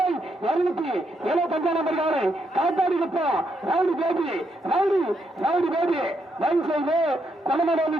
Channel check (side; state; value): both; normal; correlation 0.78